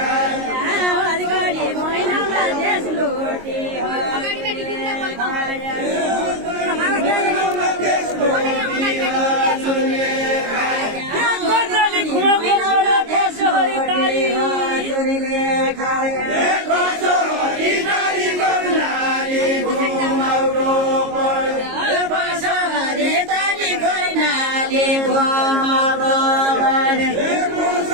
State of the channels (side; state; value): left; late; 22 ms